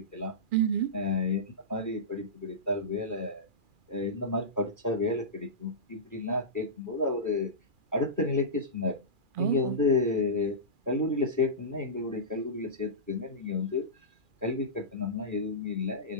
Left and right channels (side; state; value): left; late; 2.4 ms